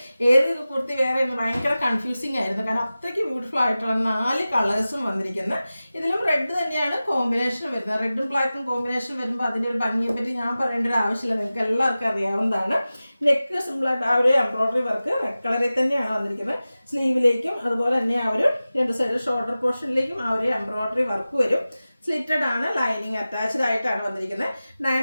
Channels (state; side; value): inverted; both; correlation -0.96